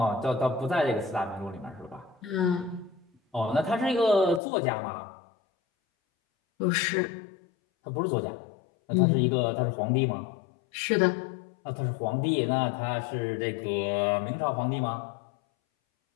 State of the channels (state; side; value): drops out; right; at 4.4 s